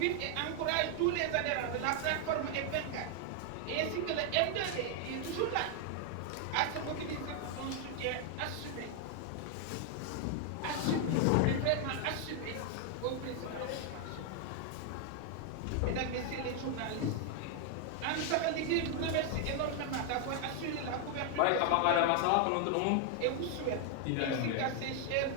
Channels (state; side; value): different; both; correlation 0.00